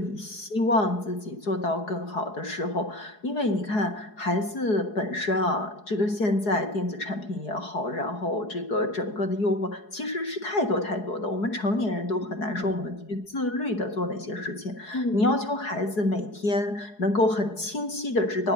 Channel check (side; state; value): right; late; 4.8 ms